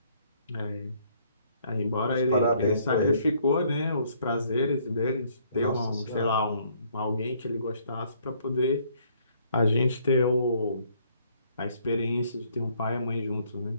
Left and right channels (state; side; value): inverted; both; correlation -0.65